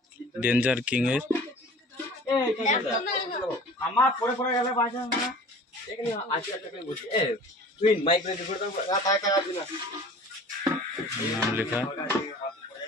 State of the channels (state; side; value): normal; both; correlation 0.43